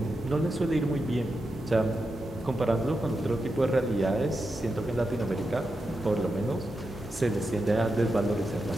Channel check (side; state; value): both; normal; correlation 0.88